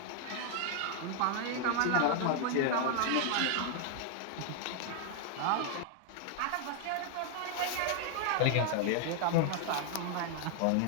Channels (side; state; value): both; different; correlation 0.00